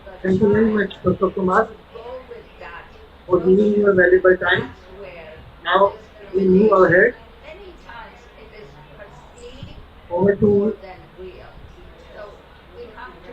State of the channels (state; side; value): identical; both; correlation 1.00